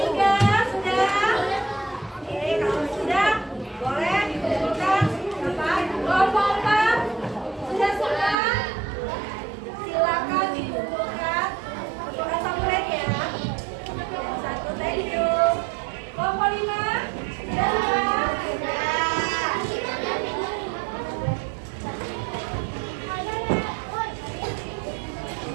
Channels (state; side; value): drops out; left; at 8.3 s